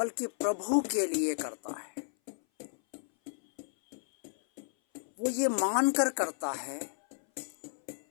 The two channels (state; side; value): silent; right; 56 dB below the other